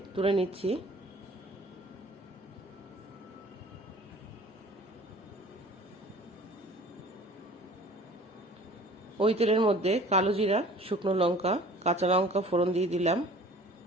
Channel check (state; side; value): normal; both; correlation 0.47